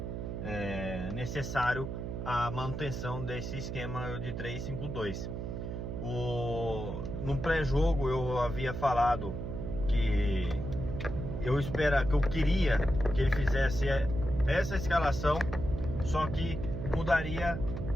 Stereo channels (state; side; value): noise; right; hum, 5 dB below the sound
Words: necessário a manutenção desse esquema de 3-5-2. No pré-jogo eu havia falado que eu queria que ele fizesse essa escalação, só que mudaria